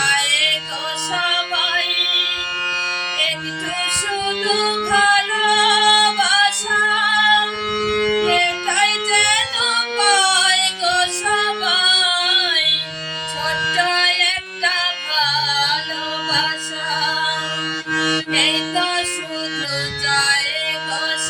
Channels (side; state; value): both; identical; correlation 1.00